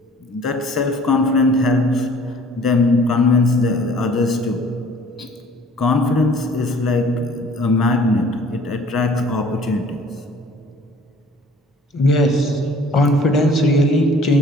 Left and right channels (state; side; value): normal; both; correlation 0.52